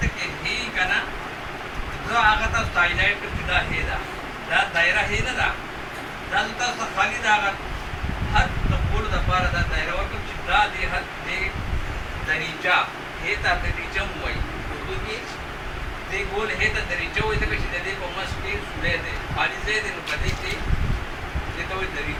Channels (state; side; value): identical; both; correlation 1.00